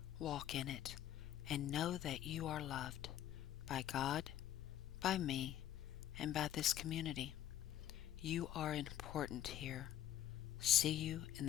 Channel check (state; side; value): quieter; right; 11.8 dB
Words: walk in it, and know that you are loved by God, by me, and by this community. You are important here. See you in